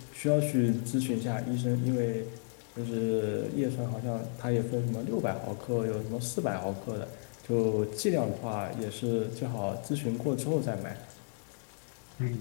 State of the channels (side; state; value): right; silent; digital silence